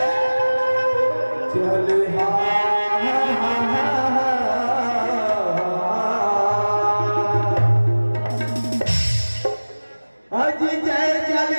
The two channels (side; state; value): both; inverted; correlation -1.00